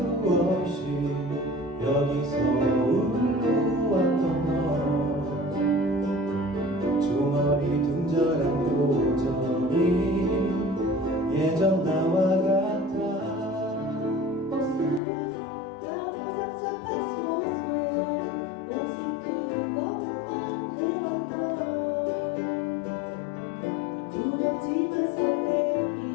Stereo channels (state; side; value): drops out; right; at 15.0 s